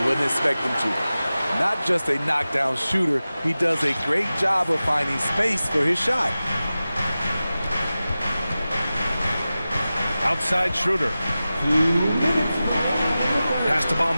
wouldn't expect them to. Not just a knockdown shooter, he does a great job of finding space for his shot. Outside Schroeder. Pass to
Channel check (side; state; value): both; inverted; correlation -0.95